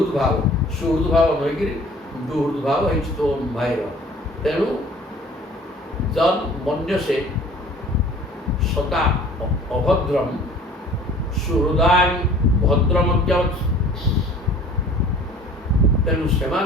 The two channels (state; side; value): normal; both; correlation 0.49